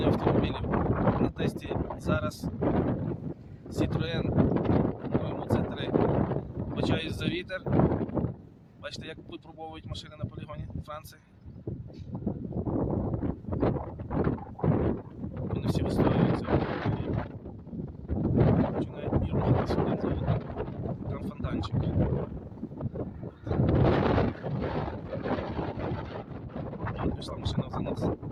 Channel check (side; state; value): both; identical; correlation 1.00